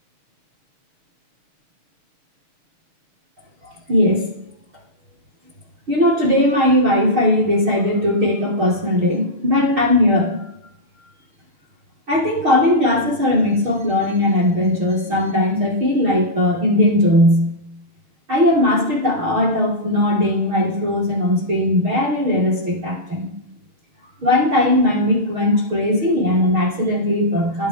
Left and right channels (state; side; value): late; left; 6.5 ms